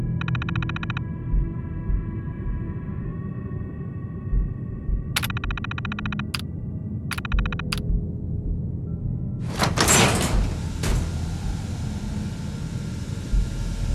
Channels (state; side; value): identical; both; correlation 1.00